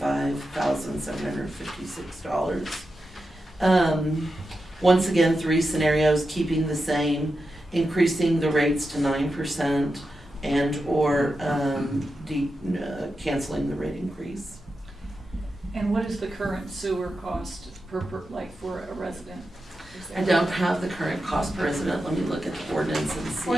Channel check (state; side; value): normal; both; correlation 0.89